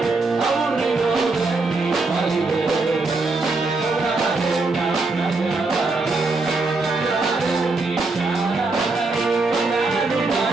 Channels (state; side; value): quieter; left; 3.5 dB